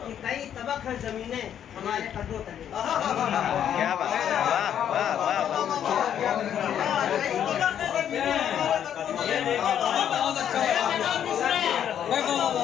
कि कई तबक है जमीनें हमारे कदमों तले। क्या बात है, वाह वाह वाह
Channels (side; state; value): right; quieter; 9.6 dB